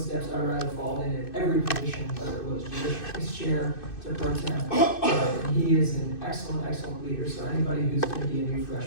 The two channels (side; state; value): right; late; 2.6 ms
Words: I would rather follow in every position, whether it was Judiciary chair to pro temp. He is an excellent, excellent leader. So anybody who's going to be a new